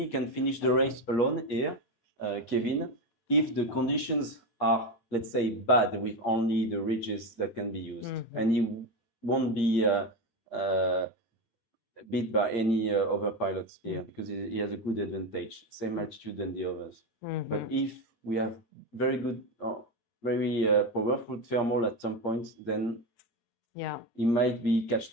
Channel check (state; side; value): late; right; 8.6 ms